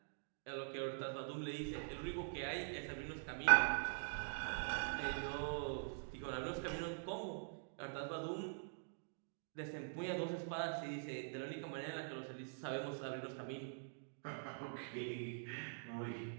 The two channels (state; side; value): silent; left; digital silence